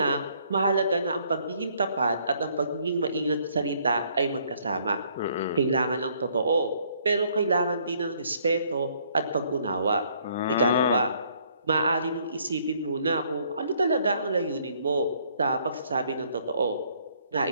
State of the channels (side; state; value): both; inverted; correlation -0.65